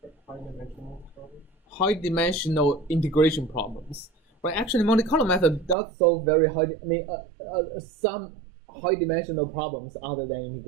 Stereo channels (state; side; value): drops out; left; at 5.8 s